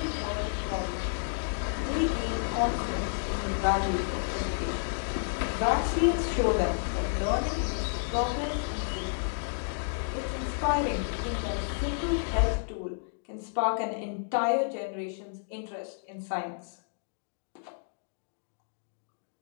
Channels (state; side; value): silent; right; digital silence